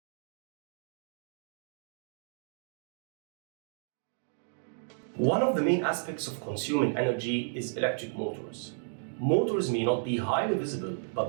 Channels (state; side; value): silent; left; digital silence